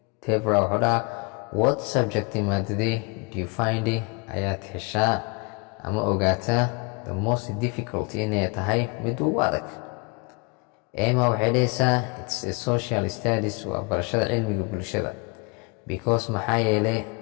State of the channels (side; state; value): right; quieter; 30.1 dB